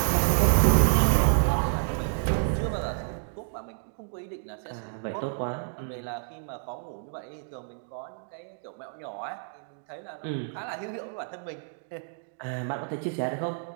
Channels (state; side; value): silent; left; digital silence